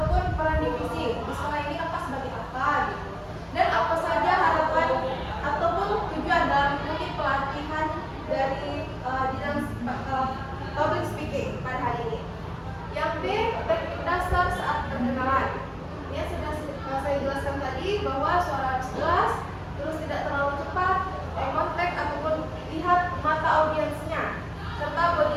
peran divisi. Di sekolah ini kakak sebagai apa gitu. Dan apa saja harapan ataupun tujuan dalam mengikuti pelatihan dari bidang public speaking pada hari ini. Yang B, teknik dasar saat perkenalan. Ini sudah saya jelaskan tadi bahwa suara harus jelas, terus tidak terlalu cepat, eye contact ataupun lihat mata audiensnya, serta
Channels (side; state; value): both; identical; correlation 1.00